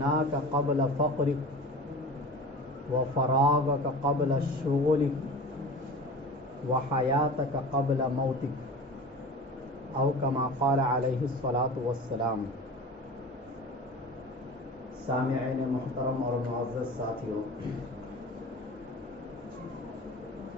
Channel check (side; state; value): both; normal; correlation 0.36